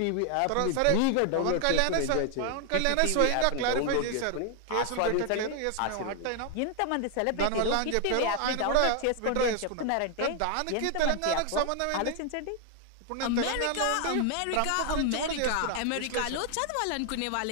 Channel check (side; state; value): both; different; correlation 0.00